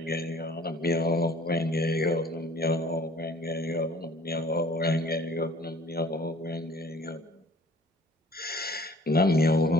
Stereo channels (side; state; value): both; normal; correlation 0.52